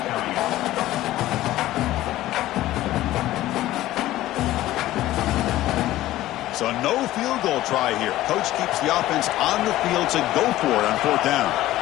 So no field goal try here. Coach keeps the offense on the field to go for it on fourth down.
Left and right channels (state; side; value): quieter; right; 15.3 dB